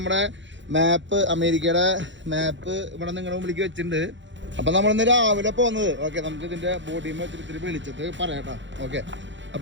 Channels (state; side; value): late; left; 0.54 ms